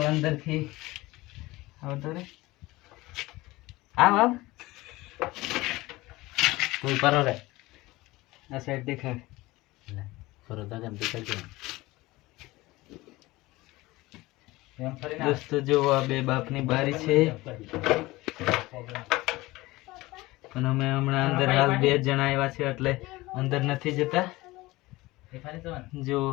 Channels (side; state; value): right; quieter; 19.9 dB